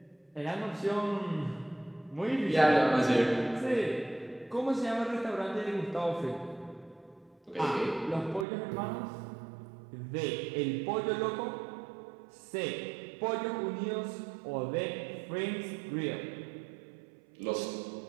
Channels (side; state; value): left; drops out; at 8.5 s